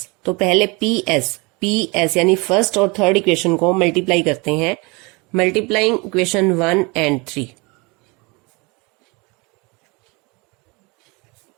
तो पहले पी एस यानी फर्स्ट और थर्ड इक्वेशन को मल्टीप्लाई करते हैं। Multiplying equation 1 and 3।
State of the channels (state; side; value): quieter; left; 27.5 dB